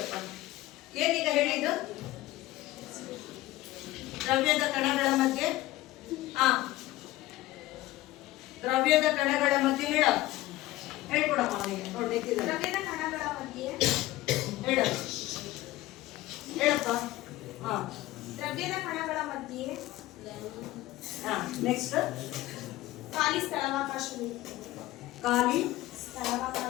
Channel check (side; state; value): right; quieter; 17.0 dB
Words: ಏನೀಗ ಹೇಳಿದ್ದು? ದ್ರವ್ಯದ ಕಣಗಳ ಮಧ್ಯೆ ದ್ರವ್ಯದ ಕಣಗಳ ಮಧ್ಯೆ ಹೇಳ್ಕೊಡಮ್ಮ ಅವನಿಗೆ. ನೋಡಿ ನಿಂತಿದ್ದಾರೆ. ದ್ರವ್ಯದ ಕಣಗಳ ಮಧ್ಯೆ ಹೇಳಪ್ಪ. ದ್ರವ್ಯದ ಕಣಗಳ ಮಧ್ಯೆ ನೆಕ್ಸ್ಟ್ ಖಾಲಿ ಸ್ಥಳಾವಕಾಶವಿರುತ್ತದೆ. ಖಾಲಿ